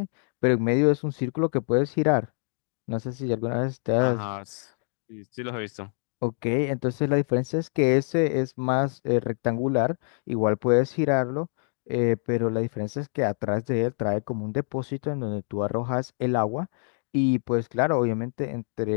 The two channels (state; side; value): silent; right; 61 dB below the other